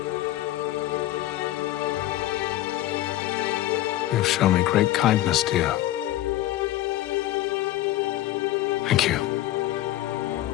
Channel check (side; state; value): right; quieter; 14.8 dB